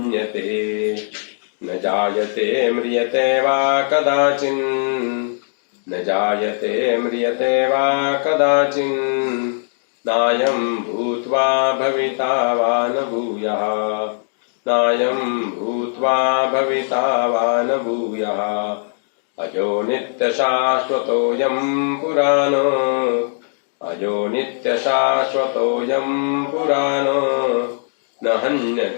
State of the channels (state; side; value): silent; right; digital silence